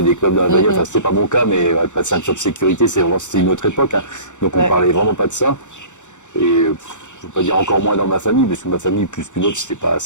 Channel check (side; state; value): right; late; 0.85 ms